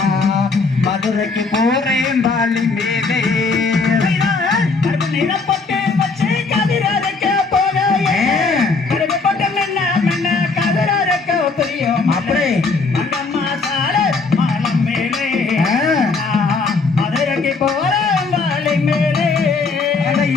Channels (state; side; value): quieter; right; 4.2 dB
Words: மதுரைக்கு போறேன் வாலி மேலே அப்படி மங்கம்மா சால மாலை மேலே மதுரைக்கு போறேன் வாலி மேலே